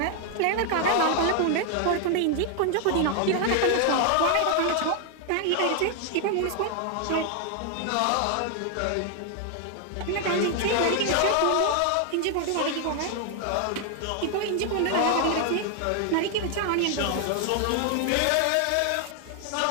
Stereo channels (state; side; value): different; both; correlation 0.00